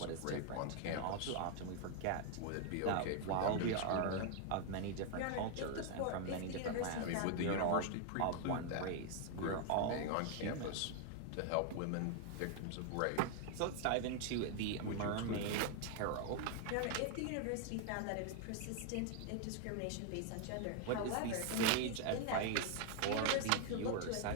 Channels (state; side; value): different; both; correlation 0.00